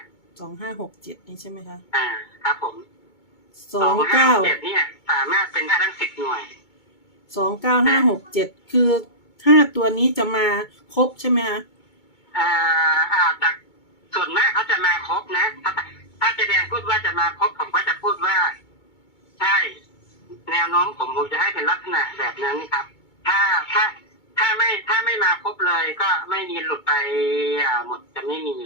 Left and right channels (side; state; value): right; late; 2.2 ms